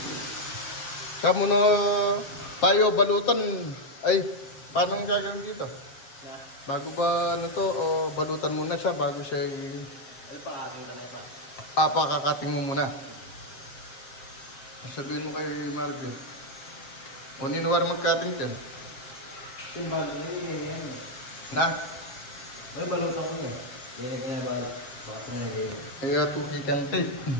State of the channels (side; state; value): right; late; 7.5 ms